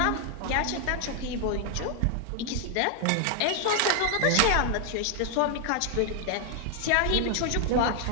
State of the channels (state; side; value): different; both; correlation 0.00